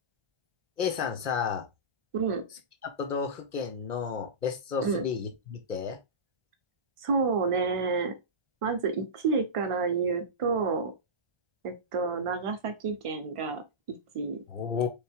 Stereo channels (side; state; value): left; late; 1.0 ms